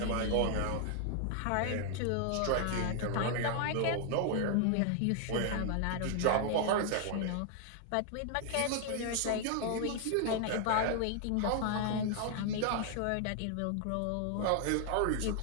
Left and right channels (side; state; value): both; different; correlation 0.00